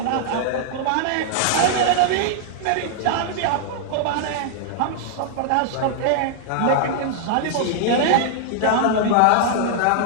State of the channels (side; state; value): both; different; correlation -0.01